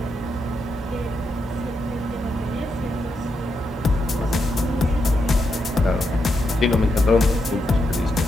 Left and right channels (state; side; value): normal; both; correlation 0.83